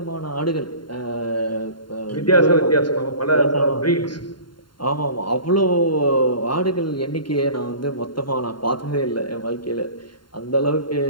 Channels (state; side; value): late; right; 0.72 ms